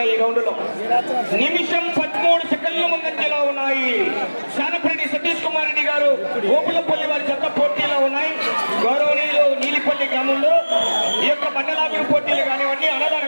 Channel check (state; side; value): inverted; both; correlation -1.00